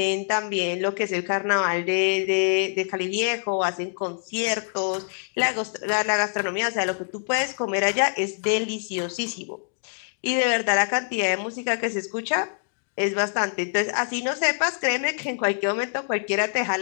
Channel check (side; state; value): right; silent; 62 dB below the other